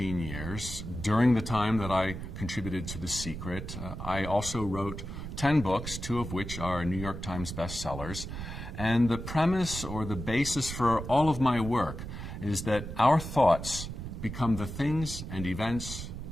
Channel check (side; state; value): right; noise; rumble, 8 dB below the sound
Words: years, during the time that I contributed to The Secret, I also wrote 10 books, 2 of which are New York Times bestsellers. And the premise or the basis for all of my work is that our thoughts become the things and events